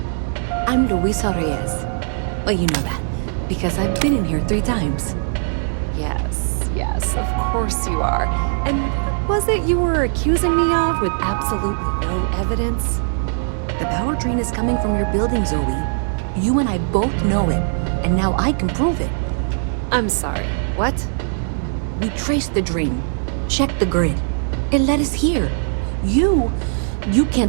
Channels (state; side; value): silent; left; digital silence